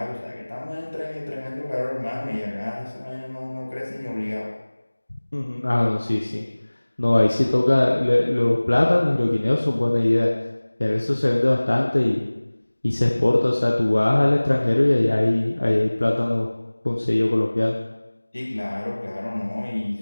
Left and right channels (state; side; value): inverted; both; correlation -1.00